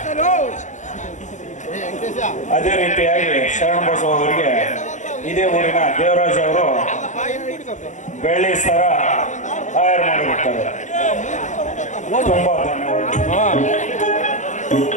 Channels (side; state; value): right; late; 0.35 ms